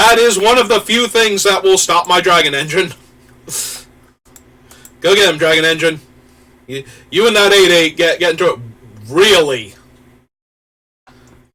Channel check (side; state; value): both; identical; correlation 1.00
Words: is one of the few things that will stop my Dragon Engine. Go get him, Dragon Engine. You and that 8/8 get into it. Really?